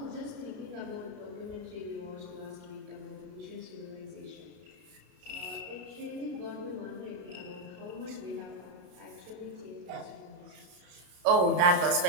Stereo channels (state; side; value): late; left; 33 ms